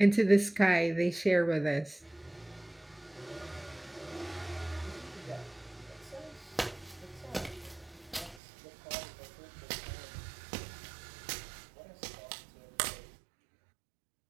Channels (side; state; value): left; drops out; at 8.4 s